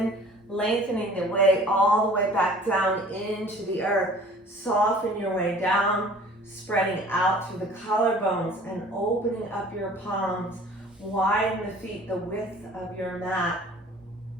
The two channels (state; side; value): normal; both; correlation 0.48